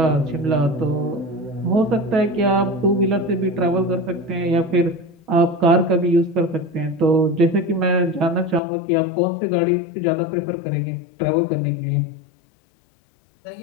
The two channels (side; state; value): right; drops out; at 8.6 s